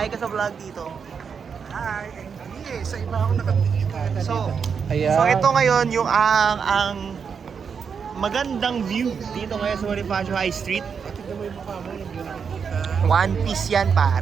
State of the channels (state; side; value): quieter; left; 6.4 dB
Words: ka sa vlog dito. Hi, hindi sa iba ako nakatingin. So Ayan. ito ngayon yung ang magandang view dito ngayon sa Bonifacio High Street. Tignan mo yung mukha mo, hindi na nakikita. One Piece yan